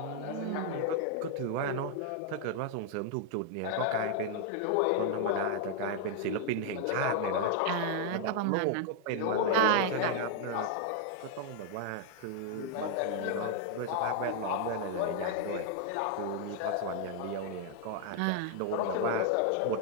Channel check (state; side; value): different; both; correlation 0.00